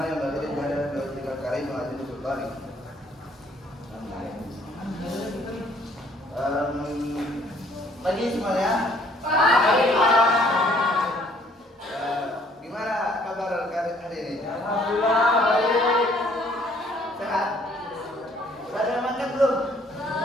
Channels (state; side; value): normal; both; correlation 0.62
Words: yang bagi pada dua karim wa adil sultani. Pagi semuanya. Pagi. Gimana kabar hari ini? Alhamdulillah baik. Sehat? Sudah ada yang makan belum?